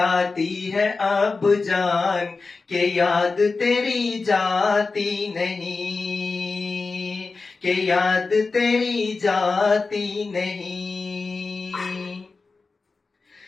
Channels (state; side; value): quieter; right; 4.1 dB